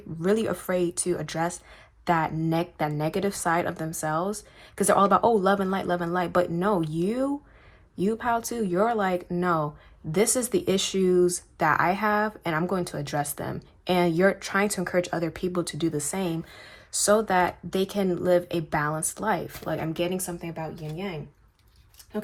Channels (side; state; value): both; identical; correlation 1.00